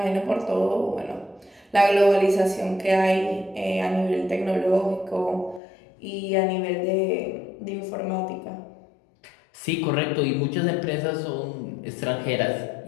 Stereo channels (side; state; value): right; drops out; at 5.6 s